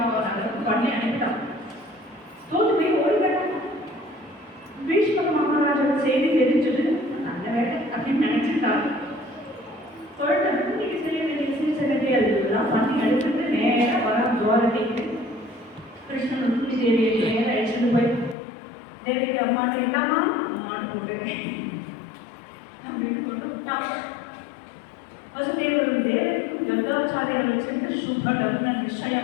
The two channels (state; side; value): drops out; right; at 18.4 s